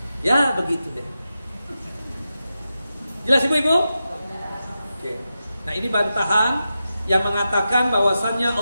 Ya, begitu deh. Jelas Ibu-ibu? Oke. Nah, ini bantahan yang mengatakan bahwasannya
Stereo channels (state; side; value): inverted; both; correlation -0.91